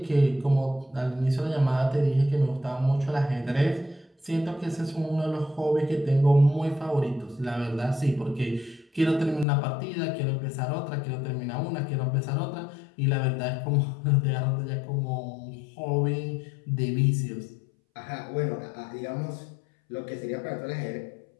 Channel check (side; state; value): right; drops out; at 9.5 s